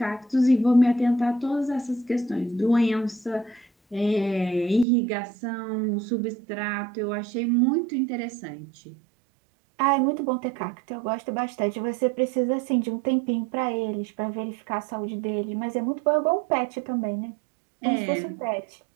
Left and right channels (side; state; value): left; drops out; at 4.9 s